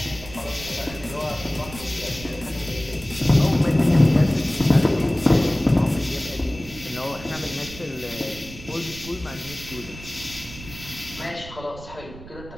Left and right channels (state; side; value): noise; right; rumble, 16 dB below the sound